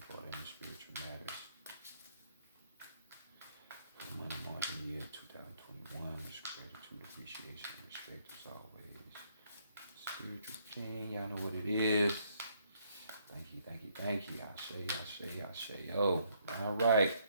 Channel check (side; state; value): both; inverted; correlation -0.69